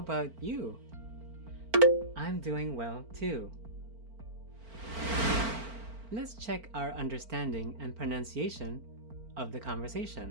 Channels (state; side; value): late; left; 4.4 ms